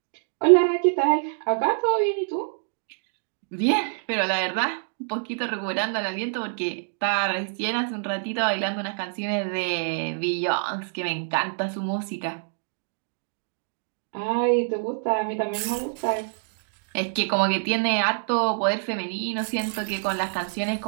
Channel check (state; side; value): silent; left; digital silence